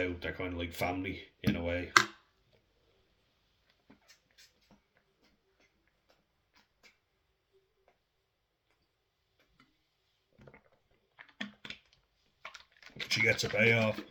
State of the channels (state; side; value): identical; both; correlation 1.00